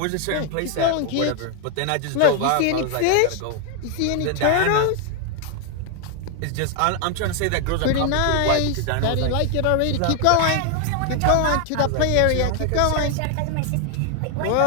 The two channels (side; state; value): both; different; correlation 0.01